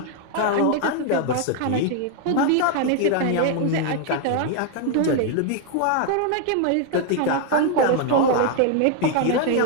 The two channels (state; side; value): different; both; correlation 0.00